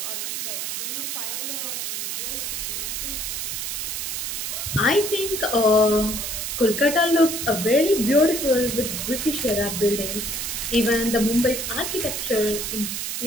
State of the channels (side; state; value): right; noise; hiss, 3 dB below the sound